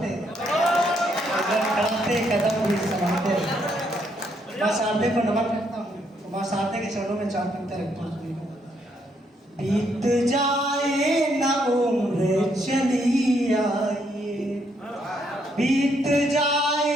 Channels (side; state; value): both; normal; correlation 0.73